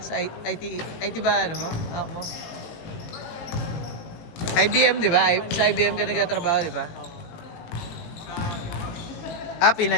Sa IT ba ano mo? Ako. IBM, di ba? Sa IBM ka nagtatrabaho, di ba?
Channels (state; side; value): late; right; 18 ms